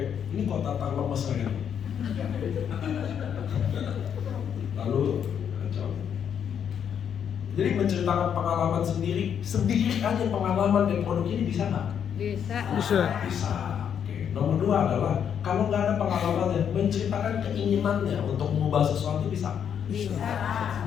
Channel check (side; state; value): right; quieter; 8.3 dB